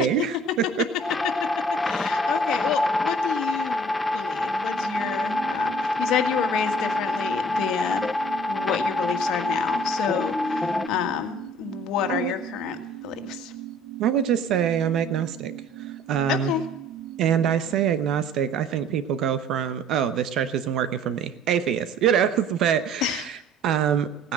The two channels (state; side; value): normal; both; correlation 0.52